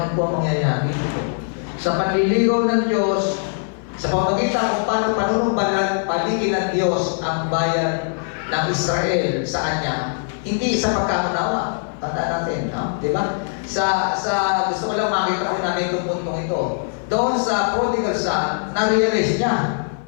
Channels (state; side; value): silent; right; 56 dB below the other